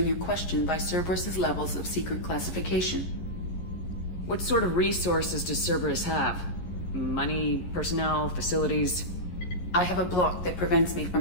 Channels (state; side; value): late; right; 11 ms